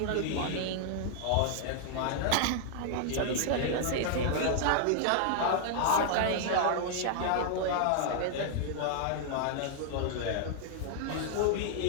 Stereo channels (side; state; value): both; different; correlation -0.01